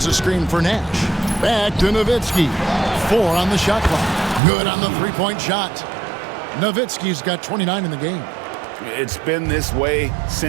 a screen for Nash. Back to Nowitzki. 4 on the shot clock. Good on the three-point shot. Nowitzki's got 29 in the game. It's been this way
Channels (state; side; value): drops out; left; at 4.4 s